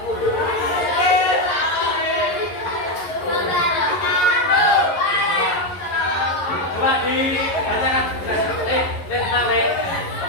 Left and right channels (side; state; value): right; late; 11 ms